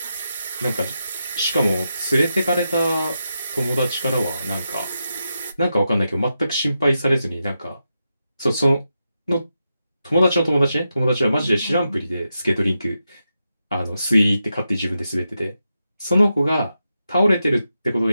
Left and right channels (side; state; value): both; inverted; correlation -0.87